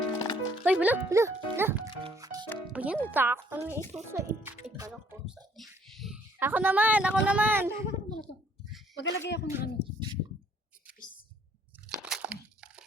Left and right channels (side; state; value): both; normal; correlation 0.63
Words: Ay, wala. O yan, natakot na ito sa kala ko sa Ako naman. Magalagay ako ng ano. Peace.